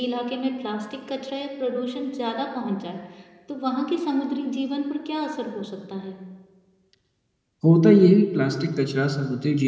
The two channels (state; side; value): identical; both; correlation 1.00